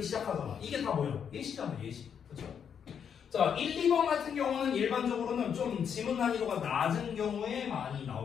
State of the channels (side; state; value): right; quieter; 7.7 dB